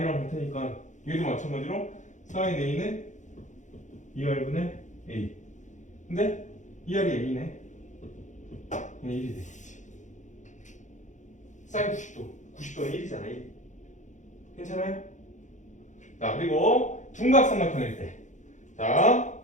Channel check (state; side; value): late; right; 0.35 ms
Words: 같으니까 얘도 마찬가지로 사인 A는 2R분의 A. 근데 2R이 A네. 그냥 1이 되겠지. 사인 90도는 1이잖아. 1. 괜찮아요? 자, 그리고 둔각삼각형일 때. 자,